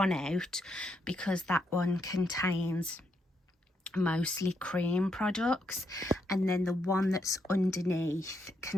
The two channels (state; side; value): normal; both; correlation 0.79